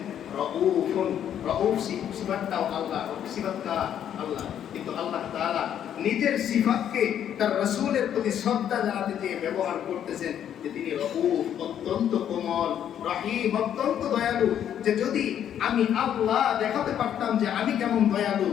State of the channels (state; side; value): quieter; right; 9.8 dB